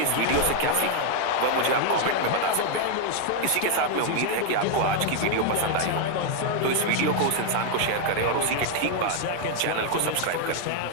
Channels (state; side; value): different; both; correlation 0.00